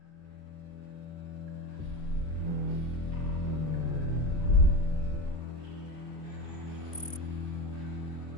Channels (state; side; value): late; right; 2.8 ms